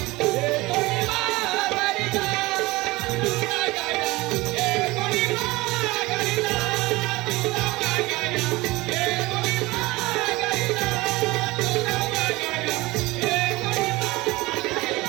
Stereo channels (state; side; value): quieter; left; 21.3 dB